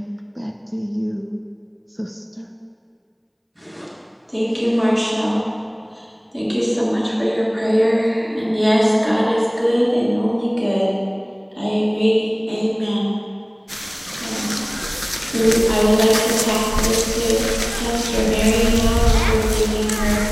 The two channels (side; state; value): both; identical; correlation 1.00